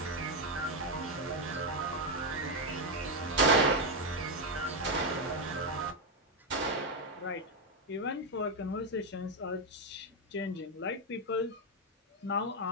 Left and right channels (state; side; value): normal; both; correlation 0.04